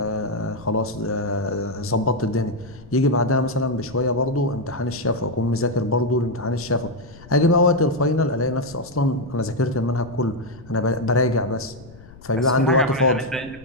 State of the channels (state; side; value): noise; left; rumble, 20 dB below the sound